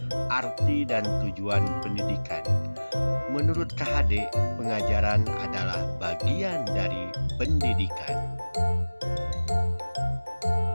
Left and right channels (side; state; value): both; inverted; correlation -1.00